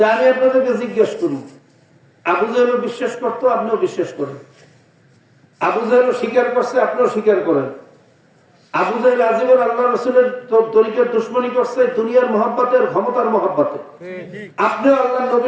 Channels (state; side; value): identical; both; correlation 1.00